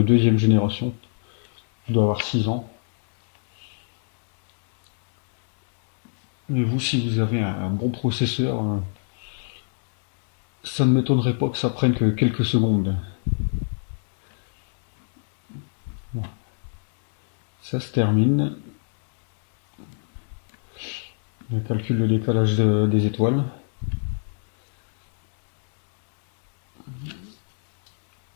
génération. Il doit avoir 6 ans. Et vous, si vous avez un bon processeur, ça ne m'étonnerait pas que ça prenne que quelques secondes. Bon, ça se termine. On calcule le décalage des étoiles.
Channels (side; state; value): right; silent; digital silence